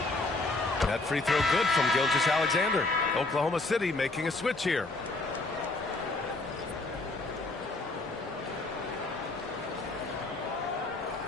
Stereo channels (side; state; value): right; quieter; 3.2 dB